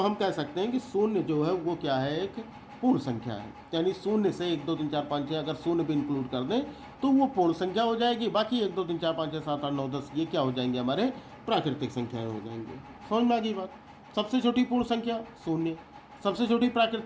कह सकते हैं कि शून्य जो है वो क्या है? एक पूर्ण संख्या है। यानी शून्य से 1 2 3 4 5 6 अगर शून्य भी इंक्लूड कर दें तो वो पूर्ण संख्या हो जाएगी। बाकी 1 2 3 4 5 6 7 8 9 10 ये क्या हो जाएंगे? हमारे प्राकृतिक संख्याएं हो जाएंगे। समझ में आ गई बात? सबसे छोटी पूर्ण संख्या शून्य, सबसे छोटी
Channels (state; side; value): identical; both; correlation 1.00